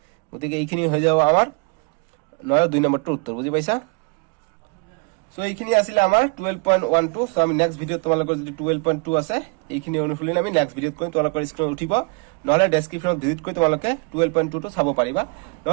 গতিকে এইখিনি হৈ যাব আমাৰ 9 2 নম্বৰটোৰ উত্তৰ বুজি পাইছা সো এইখিনি আছিল আমাৰ 12.12 সো আমি নেক্সট ভিডিওত তোমালোকৰ যদি 12.2 আছে এইখিনি অনুশীলন আমি নেক্সট ভিডিওত কৰিম তোমালোকৰ স্ক্ৰীনত উঠিব নহলে ডেসক্ৰিপচনত ভিজিট কৰি তোমালোকে 12.2 টো চাব পাৰিবা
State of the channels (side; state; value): left; quieter; 32.7 dB